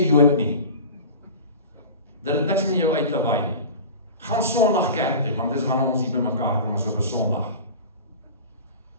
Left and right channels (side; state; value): both; inverted; correlation -0.34